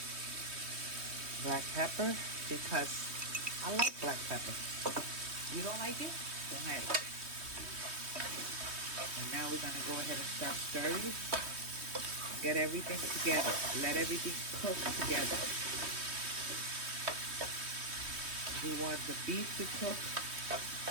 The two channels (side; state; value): left; late; 3.2 ms